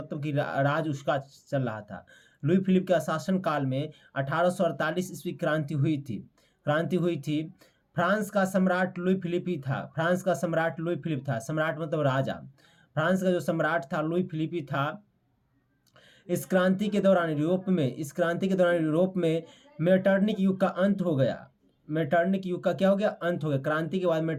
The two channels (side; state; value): both; identical; correlation 1.00